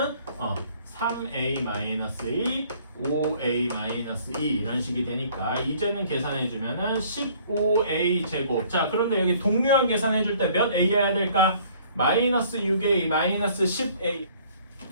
3a-2, 5a-2 이런 식이 되니까 이제는 계산해주면은 15a 제곱. 자, 그런데 여기 동류한 계산해줄 때 몇 a여야 될까? 마이너스 6a, 마이너스 10a.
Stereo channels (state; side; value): inverted; both; correlation -0.57